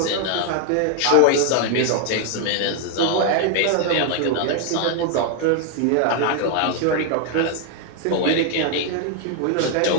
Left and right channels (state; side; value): different; both; correlation 0.01